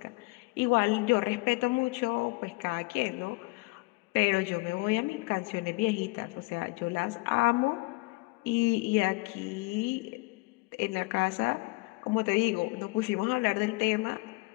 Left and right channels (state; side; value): quieter; right; 25.6 dB